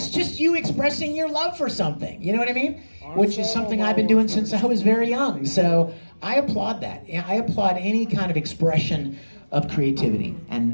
just you expressing your love for something. You know what I mean? Which is something I've been doing since I was very young. So I applaud that. I applaud any kind of expression of creativity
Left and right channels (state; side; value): inverted; both; correlation -1.00